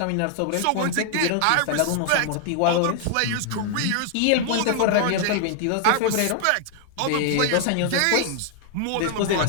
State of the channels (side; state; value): both; different; correlation 0.00